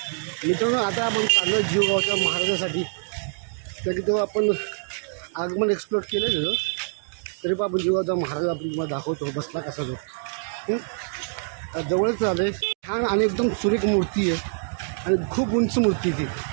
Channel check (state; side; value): silent; left; digital silence